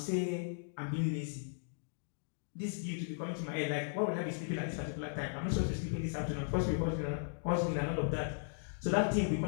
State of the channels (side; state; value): right; silent; digital silence